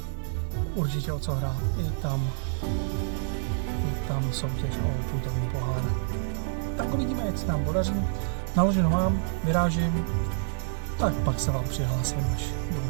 určitě o co hrát. Je tam soutěž o putovní pohár. Tak uvidíme, jak se nám podaří. Naloženo mám, vyrážím, tak pak se vám přihlásím, až budu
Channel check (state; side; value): silent; left; 59 dB below the other